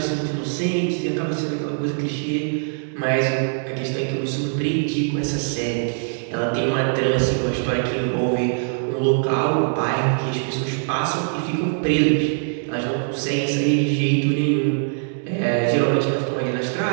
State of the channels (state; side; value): silent; left; 64 dB below the other